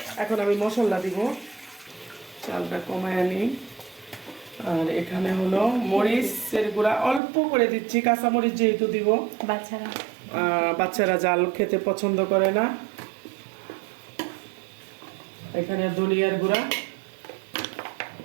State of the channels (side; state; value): left; drops out; at 7.2 s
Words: এখন আমি মশলা দিব। চালটা কমায় আনি। আর এখানে হলো মরিচের গুঁড়া অল্প করে দিচ্ছি, কাঁচা মরিচ যেহেতু দিব। বাচ্চারা জাল খেতে পছন্দ করে না। এখানে ধনিয়ার গুঁড়া